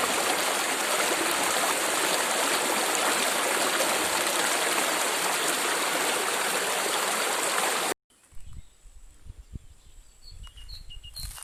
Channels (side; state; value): both; identical; correlation 1.00